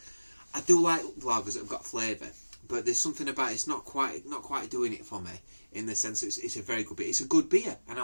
I do like lagers that have got flavour, but there's something about it's not quite doing it for me in the sense that it's a very good beer. It's a good beer, and I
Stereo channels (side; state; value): both; inverted; correlation -1.00